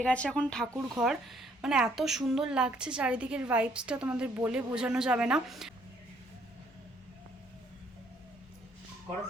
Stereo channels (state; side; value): normal; both; correlation 0.66